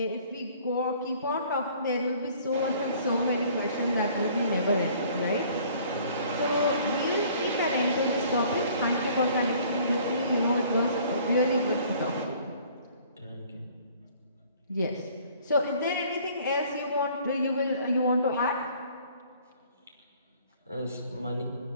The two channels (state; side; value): inverted; both; correlation -0.55